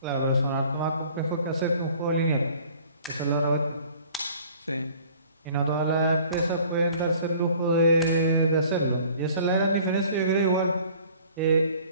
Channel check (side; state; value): both; inverted; correlation -0.51